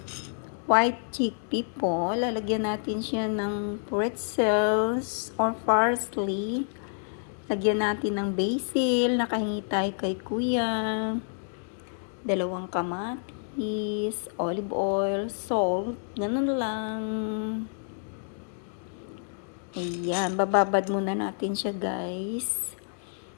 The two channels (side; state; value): right; silent; digital silence